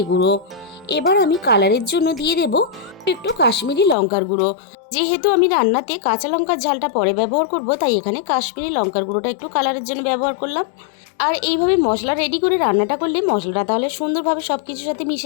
গুঁড়ো। এবার আমি কালারের জন্য দিয়ে দেব একটু কাশ্মীরি লঙ্কার গুঁড়ো। যেহেতু আমি রান্নাতে কাঁচা লঙ্কার ঝালটা পরে ব্যবহার করব, তাই এখানে কাশ্মীরি লঙ্কার গুঁড়োটা একটু কালারের জন্য ব্যবহার করলাম। আর এইভাবে মশলা রেডি করে রান্নাটা করলে মশলাটা তাহলে সুন্দরভাবে সব কিছুর সাথে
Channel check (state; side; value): drops out; right; at 4.0 s